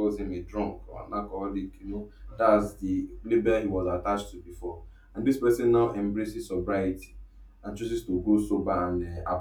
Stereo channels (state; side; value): identical; both; correlation 1.00